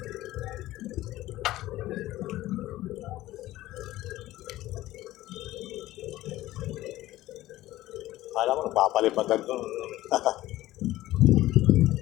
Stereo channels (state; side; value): quieter; right; 16.0 dB